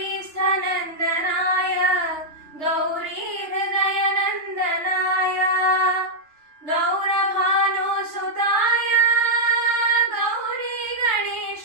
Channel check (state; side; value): late; left; 3.4 ms